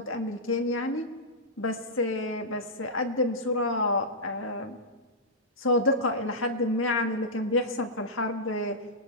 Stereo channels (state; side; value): normal; both; correlation -0.12